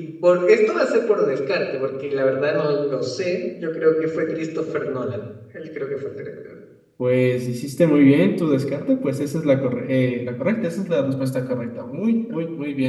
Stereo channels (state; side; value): identical; both; correlation 1.00